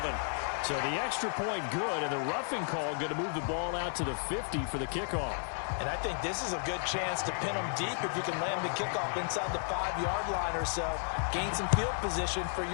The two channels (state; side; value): silent; right; 56 dB below the other